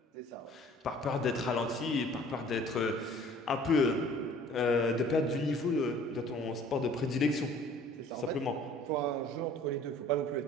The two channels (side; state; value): both; normal; correlation 0.52